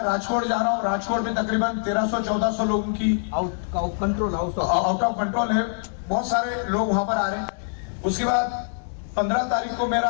राजकोट जा रहा हूँ, राजकोट में तकरीबन 1300-1400 लोगों की आउट ऑफ कंट्रोल है, बहुत सारे लोग वहां पर आ रहे हैं। उसके बाद 15 तारीख को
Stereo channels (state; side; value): silent; right; 62 dB below the other